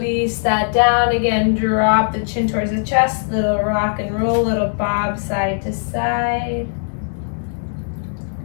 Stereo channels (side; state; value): right; silent; digital silence